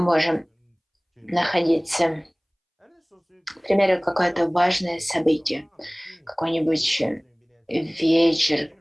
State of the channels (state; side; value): identical; both; correlation 1.00